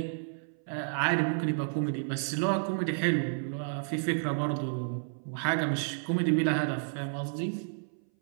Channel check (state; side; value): silent; left; 57 dB below the other